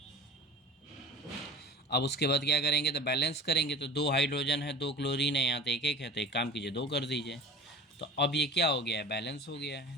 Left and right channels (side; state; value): both; normal; correlation 0.39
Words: अब उसके बाद क्या करेंगे, तो बैलेंस करेंगे। तो 2 हाइड्रोजन है, 2 क्लोरीन है, यहाँ तो 1 1 है, तो एक काम कीजिए 2 कर दीजिए। तो अब ये क्या हो गया है, बैलेंस हो गया